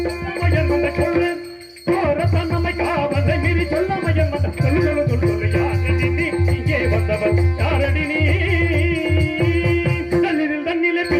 சொல்றேன். சோர தன்னமை காவலை மீறி சொல்லாமையன் வந்த சொல்லு சொல்லு சொல்லு யாரடி நீ இங்கே வந்தவன் யாரடி நீ? தண்ணில் தண்ணிலே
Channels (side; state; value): both; identical; correlation 1.00